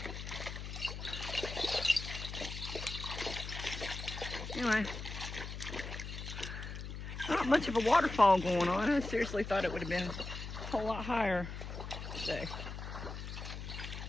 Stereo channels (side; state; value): left; noise; hum, 8 dB below the sound